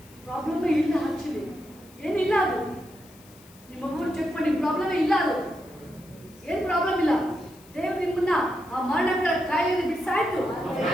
ಪ್ರಾಬ್ಲಮ್ ಇಲ್ಲ ಆಕ್ಚುಲಿ ಏನಿಲ್ಲ ಅದು ನಿಮ್ಮ ಮಗು ಚೆಕ್ ಮಾಡಿ ಪ್ರಾಬ್ಲಮ್ ಇಲ್ಲ ಅದು ಏನು ಪ್ರಾಬ್ಲಮ್ ಇಲ್ಲ ದೇವ್ರು ನಿಮ್ಮನ್ನ ಆ ಮರಣಗಳ ಕಾಯಿಲೆ ಬಿಡಿಸಾಯ್ತು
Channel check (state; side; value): noise; left; hiss, 25 dB below the sound